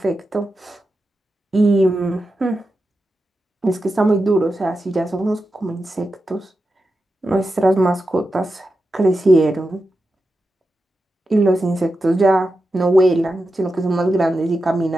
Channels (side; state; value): both; normal; correlation 0.90